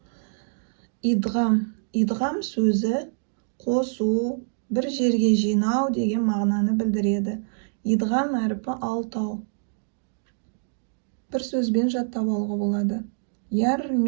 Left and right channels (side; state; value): left; silent; digital silence